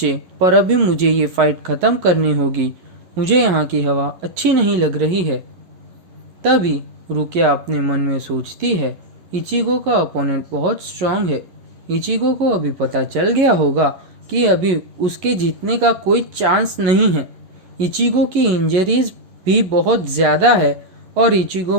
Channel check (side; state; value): left; late; 11 ms